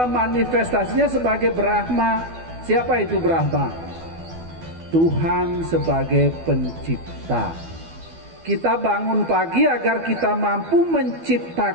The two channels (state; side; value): late; left; 12 ms